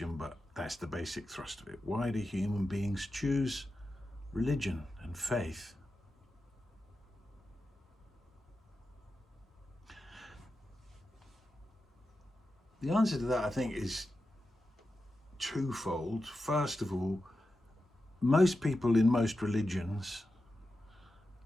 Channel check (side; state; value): both; normal; correlation 0.91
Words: but that's the basic thrust of it. Why do human beings choose religion and faith? The answer to that, I think, is twofold. First of all, most people in most religions